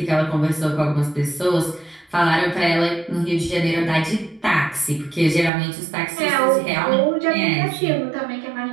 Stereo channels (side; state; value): left; drops out; at 5.5 s